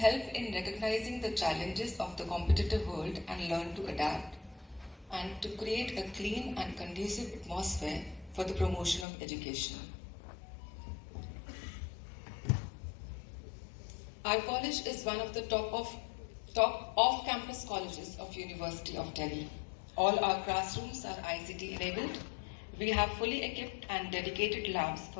in recognizing the challenges of the competitive world and learn to adapt, and to create a clean and conducive atmosphere for the promotion of education. Our college is one of the top off-campus colleges of University of Delhi. All our classrooms are ICT enabled. We have fully equipped and dedicated labs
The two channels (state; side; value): drops out; right; at 9.1 s